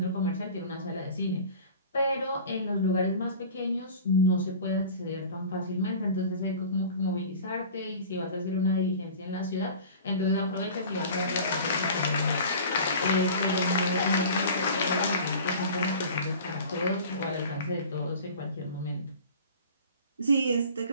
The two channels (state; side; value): inverted; both; correlation -0.40